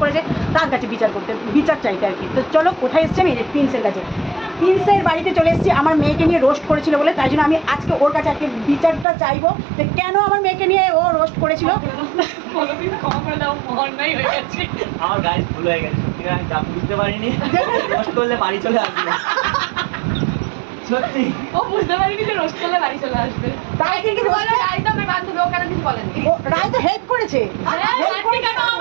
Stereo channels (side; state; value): left; drops out; at 9.1 s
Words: করেছে তার কাছে বিচার চাইতে আর কি। তো চলো কোথায় এসেছি আমি, প্রিন্সের কাছে, প্রিন্সের বাড়িতে চলে এসেছি। আমার মেয়েকে নিয়ে রোস্ট করেছিল বলে, তাই জন্য আমি আজকে ওর কাছে আজকে বিচারটা চাইবো যে কেন আমার মেয়েকে নিয়ে ও রোস্ট করেছিল। আমার গাড়ি ভুল হয়ে গেছে, আমি যা বুঝতে পারিনি, রোস্ট করলে বাড়ি চলে আসবে। সত্যি ও বুঝতে পারিনি যে রোস্ট করলে বাড়ি চলে আসবে। তাই কিন্তু রায় তো আমার বান্ধবী, ও কেন কিছু বলেনি? রায় তো হেল্প করেছে, কেন